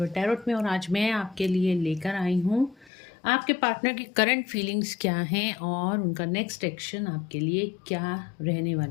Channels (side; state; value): right; drops out; at 2.9 s